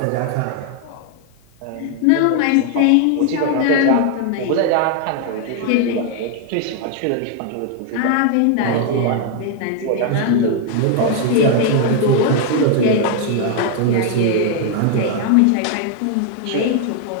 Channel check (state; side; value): different; both; correlation 0.00